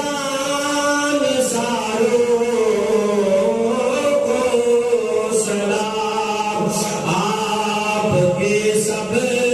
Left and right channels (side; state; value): right; noise; rumble, 29 dB below the sound